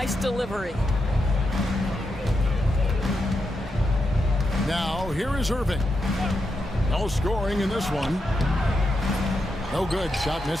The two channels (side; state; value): both; normal; correlation 0.85